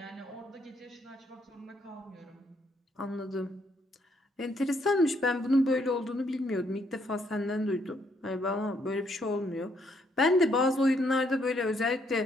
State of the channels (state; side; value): normal; both; correlation 0.71